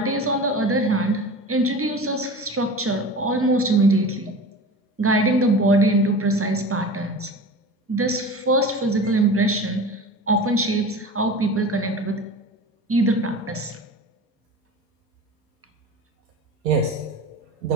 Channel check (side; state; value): both; normal; correlation 0.34